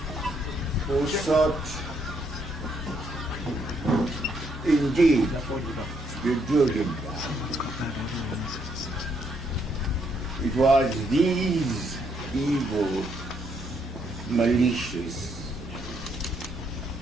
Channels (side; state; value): both; normal; correlation 0.73